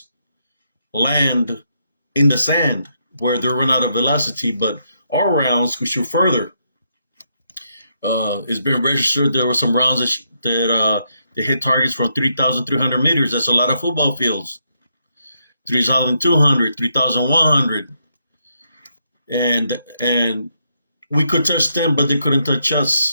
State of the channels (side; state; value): both; inverted; correlation -0.78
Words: land in the sand where they run out of velocity, but our rounds could shoot further. It's been registered there were some rounds that they hit targets from 3,300 meters. That's a lot of football fields. 3,200, 3,100. And we could touch them, but they couldn't touch